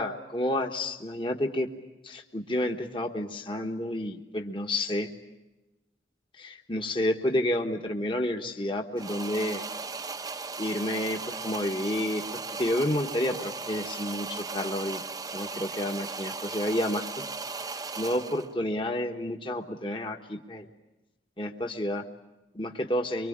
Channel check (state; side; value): normal; both; correlation 0.58